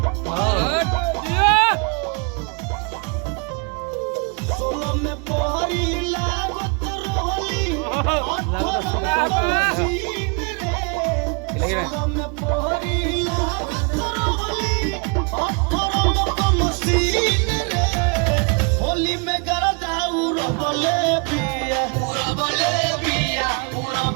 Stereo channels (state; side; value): quieter; left; 34.3 dB